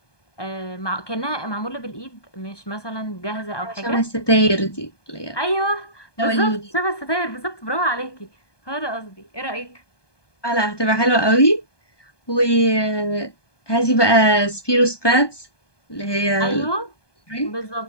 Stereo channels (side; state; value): right; late; 1.2 ms